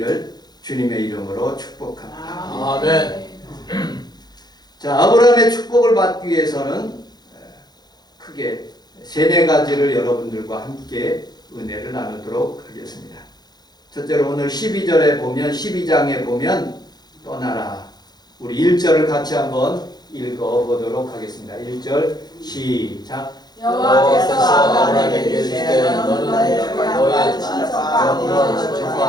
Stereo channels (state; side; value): late; right; 0.20 ms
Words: 주님의 이름으로 축복합니다. 아멘. 자, 아브라함의 축복을 받기 위해서는 크게 세네 가지를 여러분들과 함께 은혜를 나누도록 하겠습니다. 첫째로 오늘 12절에 보면 12장에 보면 떠나라. 우리 1절을 같이 한번 읽어보도록 하겠습니다. 1절 시작. 여호와께서 아브라함에게 이르시되 너는 너의 친척과